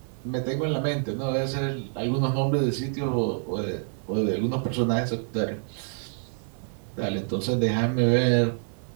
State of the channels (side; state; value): left; silent; 60 dB below the other